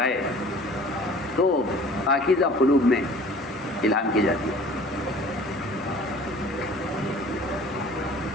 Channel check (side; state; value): both; normal; correlation 0.48